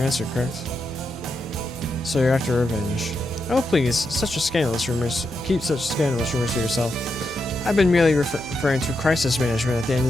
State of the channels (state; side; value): noise; left; hum, 26 dB below the sound